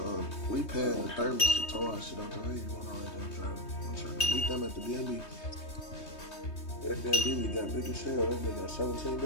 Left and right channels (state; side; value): late; right; 3.2 ms